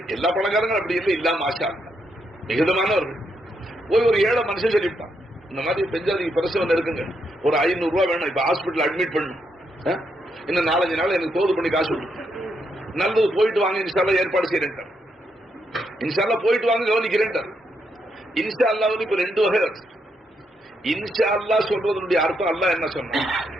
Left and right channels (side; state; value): both; normal; correlation 0.79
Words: எல்லா பணக்காரங்களும் அப்படி இல்லை, இல்லாம ஆஷா மிகுதமானவர்கள். போய் ஒரு ஏழை மனுஷன் சொல்லிவிட்டான், இந்த மாதிரி பெஞ்சாதிக்கு பிரசவம் இருக்குங்க, ஒரு 500 ரூபாய் வேணும், இப்ப ஹாஸ்பிட்டல் அட்மிட் பண்ணணும், இன்னும் 4-5 நாள் எனக்கு தோது பண்ணி காசு கொடுத்து, நல்லது போயிட்டு வாங்க, இன்ஷால்லா ஏற்பாடு செய்யறேன், இன்ஷால்லா போயிட்டு வாங்க கவனிக்கிறேன். இன்ஷால்லா வந்து இப்ப 2 வகை இருக்கு. இன்ஷால்லா சொல்றதனுடைய அர்த்தம் அல்லாஹ் என்ன சொன்னா,